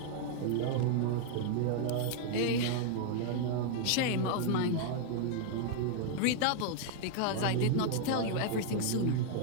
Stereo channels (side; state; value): both; different; correlation -0.01